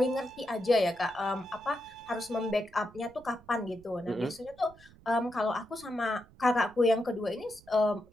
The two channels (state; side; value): noise; right; rumble, 24 dB below the sound